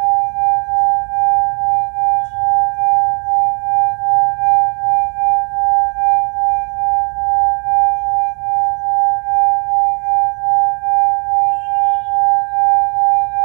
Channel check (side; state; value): left; quieter; 39.9 dB